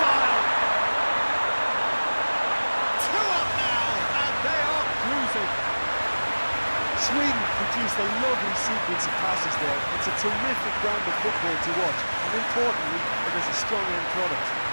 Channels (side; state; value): both; inverted; correlation -1.00